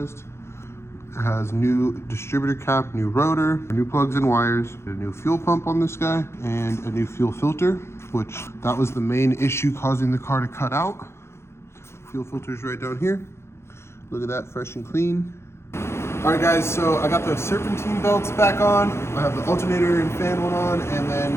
It has new distributor cap, new rotor, new plugs and wires, a new fuel pump on this guy, and a new fuel filter, which that was the main issue causing the car to cut out. Fuel filter's right down here. Look at that, fresh and clean. All right guys, so I got the serpentine belts back on. I have the alternator and fan one on, and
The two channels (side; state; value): right; late; 0.13 ms